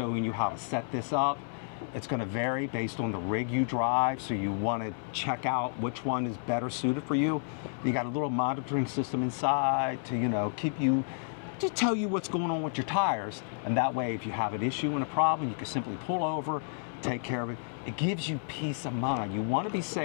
you how to set this up. It's going to vary based on the rig you drive, so you want to check out which one is better suited for you. You got a little monitoring system inside to, you know, to tell you what's going on with your tires, and that way if you have an issue and a problem, you can simply pull over, take care of it. It gives you peace of mind. You want to be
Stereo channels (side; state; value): right; silent; digital silence